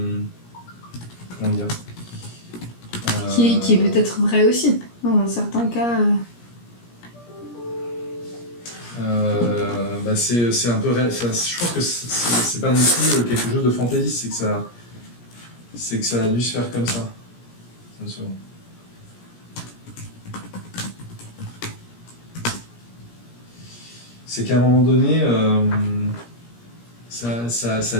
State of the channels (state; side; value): late; right; 17 ms